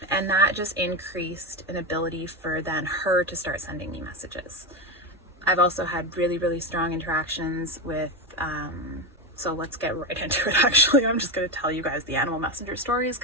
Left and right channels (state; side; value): normal; both; correlation 0.14